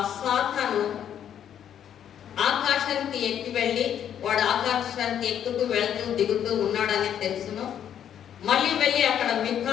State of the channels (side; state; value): right; quieter; 9.6 dB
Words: సాతాను ఆకాశానికి ఎక్కి వెళ్ళి వాడు ఆకాశానికి ఎక్కుతూ వెళ్తూ దిగుతూ ఉన్నాడని తెలుసును. మళ్ళీ వెళ్ళి అక్కడ